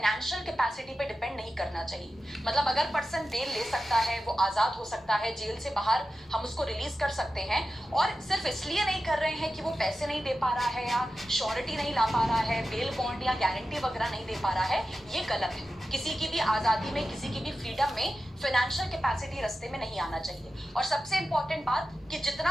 कैपेसिटी पे डिपेंड नहीं करना चाहिए। मतलब अगर पर्सन बेल ले सकता है, वो आजाद हो सकता है, जेल से बाहर हम उसको रिलीज कर सकते हैं, और सिर्फ इसलिए नहीं कर रहे हैं कि वो पैसे नहीं दे पा रहा है या श्योरिटी नहीं ला पा रहा है, बेल बॉन्ड या गारंटी वगैरह नहीं दे पा रहा है, ये गलत है। किसी की भी आजादी में, किसी की भी फ्रीडम में फाइनेंशियल कैपेसिटी रास्ते में नहीं आना चाहिए। और सबसे इंपॉर्टेंट बात कि जितना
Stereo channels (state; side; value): normal; both; correlation 0.92